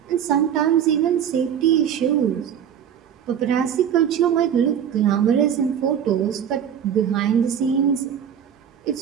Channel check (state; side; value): quieter; left; 8.8 dB